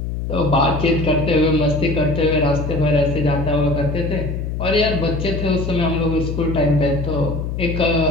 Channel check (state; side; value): noise; left; hum, 4 dB below the sound